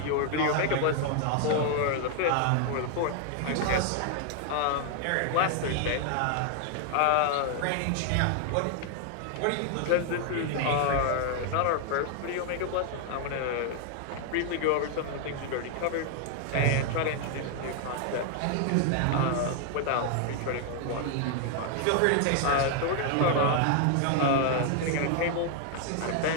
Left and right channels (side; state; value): both; different; correlation 0.00